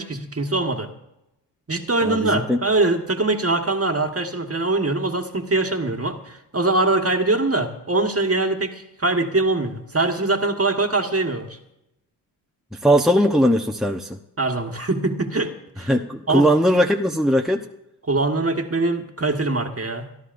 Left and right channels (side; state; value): both; normal; correlation 0.31